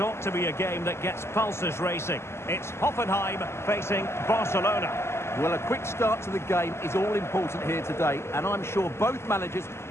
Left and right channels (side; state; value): right; late; 0.12 ms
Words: to be a game that gets pulses racing. It's Hoffenheim facing Barcelona. Well, a quick start to the game is all important here today, and I'm sure both managers